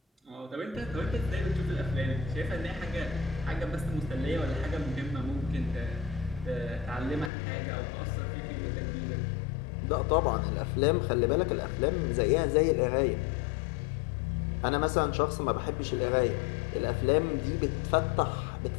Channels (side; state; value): right; drops out; at 7.3 s